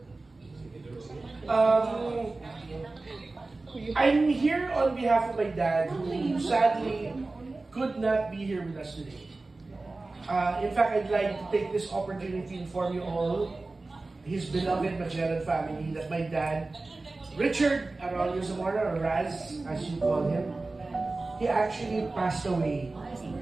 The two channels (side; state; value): left; quieter; 3.3 dB